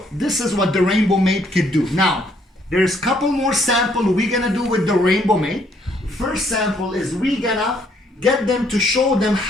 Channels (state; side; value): normal; both; correlation 0.68